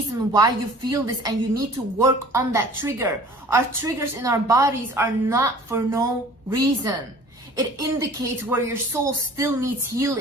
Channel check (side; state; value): both; normal; correlation 0.47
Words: why you feel this and you need to work on that trigger. Our triggers in our bodies are not for no reason. It indicates where your soul still needs